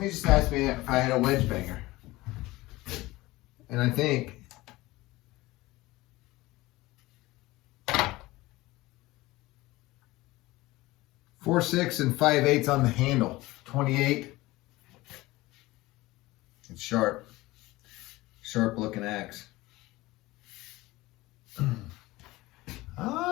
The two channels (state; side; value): quieter; right; 19.5 dB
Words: just asked me if I had a wedge banger. And I think 4/6 and 5/8 on the handle. 28. It's sharp. Sharp looking axe.